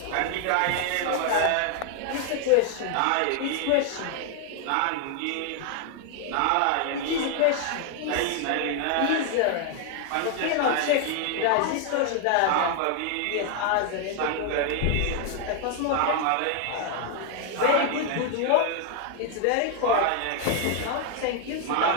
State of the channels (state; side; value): different; both; correlation 0.00